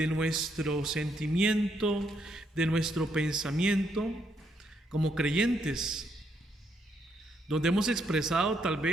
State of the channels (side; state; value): both; normal; correlation 0.75